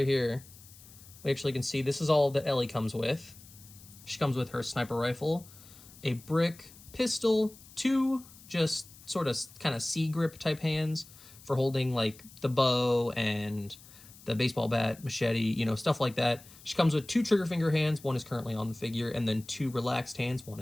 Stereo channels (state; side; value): noise; left; hiss, 21 dB below the sound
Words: here, we actually can see this is all that Ellie comes with. She comes with her sniper rifle, a brick pistol, two just sort of kind of C-grip type hands for holding like the bow and the baseball bat, machete, stuff like that. She comes with two trigger finger hands. One is currently on the figure, and then two relaxed hands. One